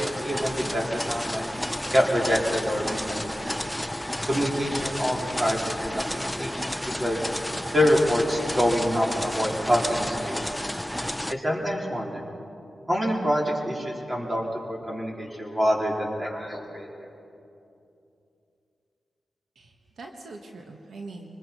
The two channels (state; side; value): normal; both; correlation 0.94